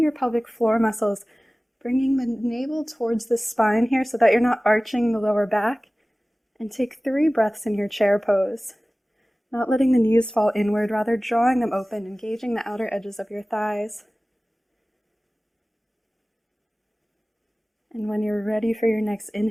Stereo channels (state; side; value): normal; both; correlation 0.98